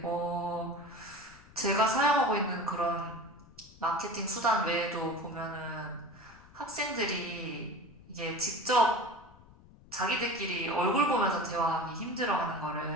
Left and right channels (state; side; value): noise; left; rumble, 23 dB below the sound